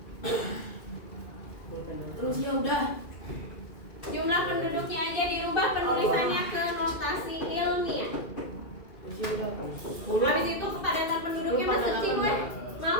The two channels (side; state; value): right; late; 2.3 ms